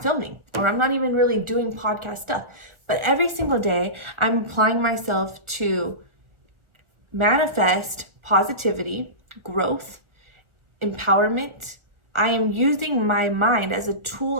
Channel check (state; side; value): late; left; 1.4 ms